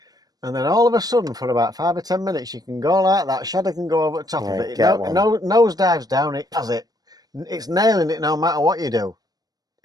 And then all of a sudden, for about 5 or 10 minutes, you can go like that. Shadow can go over the top of Right, it. get one. Nose dives down. It has it. It's nailing it no matter what you do.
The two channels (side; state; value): left; late; 0.19 ms